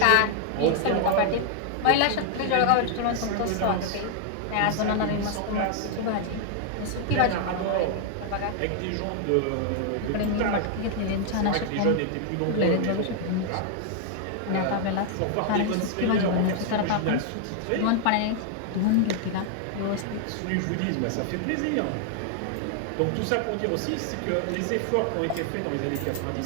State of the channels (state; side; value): different; both; correlation 0.00